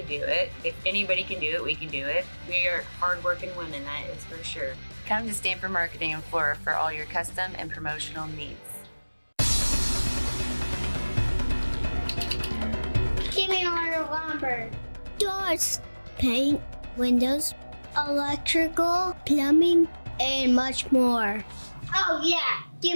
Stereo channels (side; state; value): both; inverted; correlation -1.00